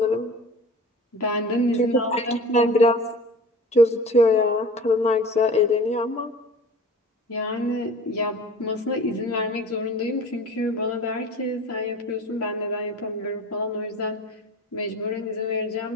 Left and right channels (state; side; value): normal; both; correlation 0.40